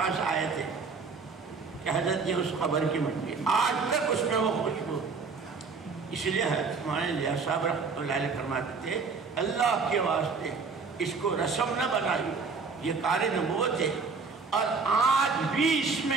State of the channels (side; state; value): left; quieter; 4.8 dB